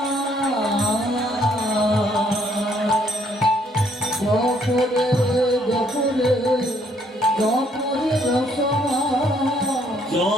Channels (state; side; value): normal; both; correlation 0.67